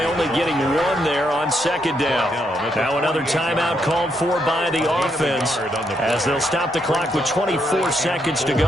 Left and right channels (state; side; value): normal; both; correlation 0.77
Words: only getting 1 there on 2nd down. Now another timeout called for by the offense as they'll stop the clock with 24 seconds to